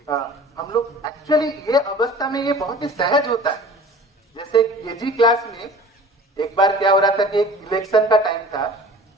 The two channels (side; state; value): both; normal; correlation 0.43